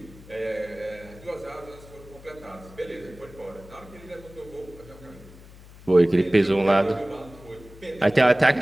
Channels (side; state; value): left; noise; hum, 20 dB below the sound